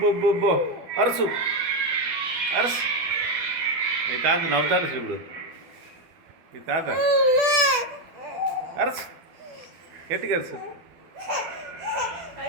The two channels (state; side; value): late; left; 12 ms